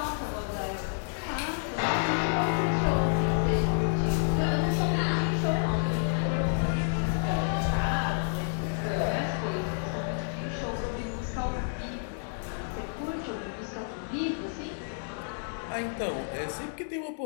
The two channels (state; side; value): silent; right; digital silence